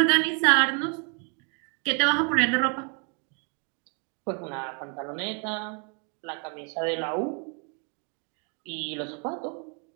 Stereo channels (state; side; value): quieter; left; 37.9 dB